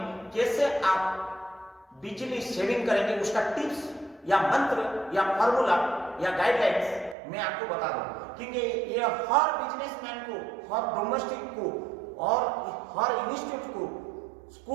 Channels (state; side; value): drops out; left; at 7.2 s